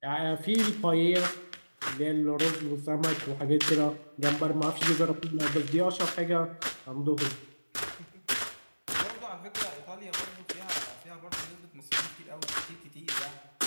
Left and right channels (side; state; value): both; inverted; correlation -1.00